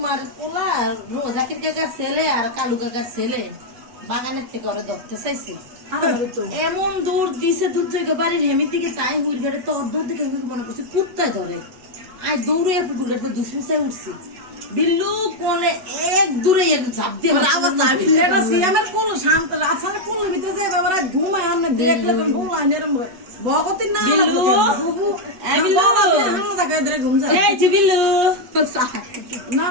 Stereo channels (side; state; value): left; late; 8.1 ms